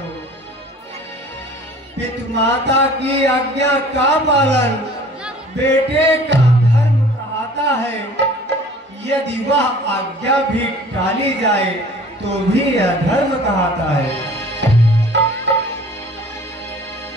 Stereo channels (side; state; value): both; normal; correlation 0.48